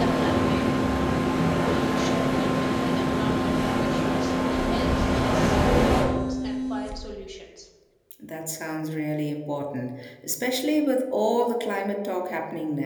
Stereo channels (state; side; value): identical; both; correlation 1.00